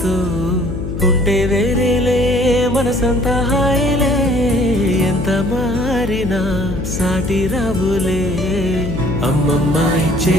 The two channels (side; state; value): left; noise; hum, 5 dB below the sound